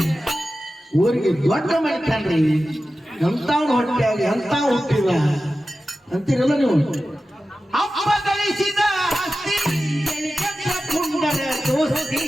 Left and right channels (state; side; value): normal; both; correlation 0.94